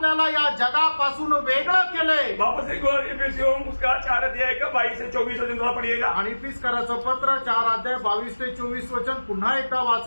या जगापासून वेगळं केलंय। वापस एक और एफेसियों उसका 4 अध्याय का 22 से 24 वचन थोड़ा पढ़िएगा। आणि इफिसकराचं पत्र 4 अध्याय 22 ते 24 वचन पुन्हा एकदा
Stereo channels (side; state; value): both; inverted; correlation -1.00